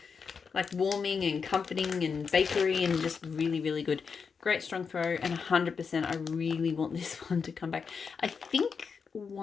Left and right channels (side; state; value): right; quieter; 5.7 dB